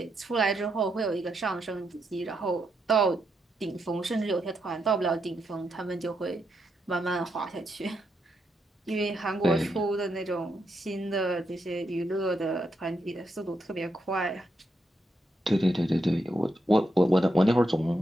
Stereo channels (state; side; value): normal; both; correlation 0.82